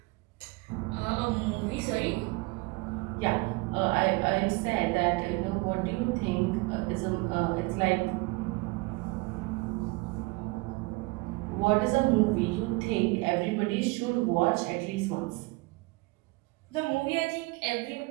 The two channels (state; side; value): quieter; left; 24.4 dB